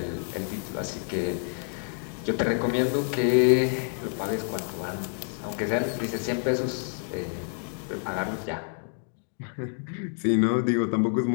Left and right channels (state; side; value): silent; right; 57 dB below the other